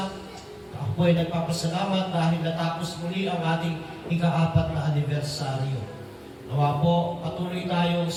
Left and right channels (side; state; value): both; identical; correlation 1.00